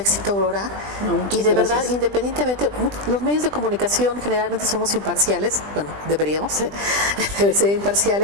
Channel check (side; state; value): left; late; 20 ms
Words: Aurora, y de verdad, independientemente, los medios de comunicación generalmente somos imparciales, bueno, deberíamos ser